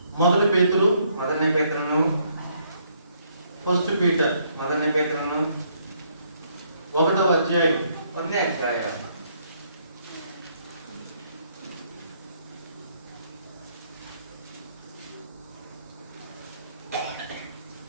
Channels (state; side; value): inverted; both; correlation -0.70